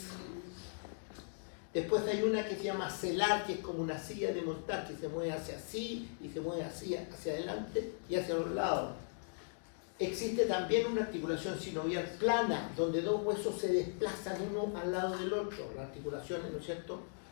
Después hay una que se llama celar, que es como una silla de montar, que se mueve hacia así y se mueve hacia adelante y hacia los lados. Existe también una articulación sinovial plana, donde dos huesos se desplazan uno al lado del otro, las articulaciones, ¿no es cierto?,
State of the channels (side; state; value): right; silent; digital silence